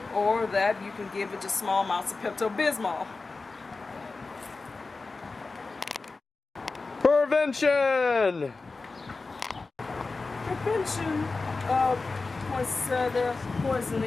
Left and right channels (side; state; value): right; quieter; 3.8 dB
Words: Or that you can give it just small amounts of Pepto-Bismol. Prevention. Prevention of poinsettia